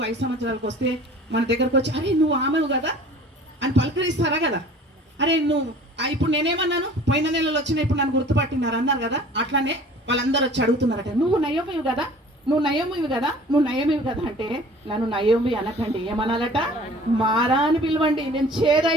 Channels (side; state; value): both; normal; correlation 0.47